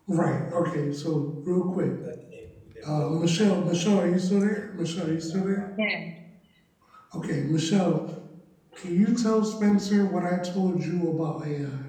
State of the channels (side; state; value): both; identical; correlation 1.00